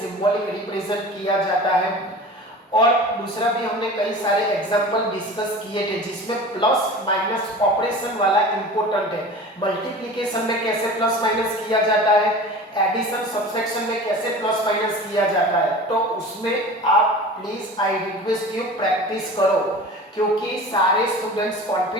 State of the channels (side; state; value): both; normal; correlation 0.37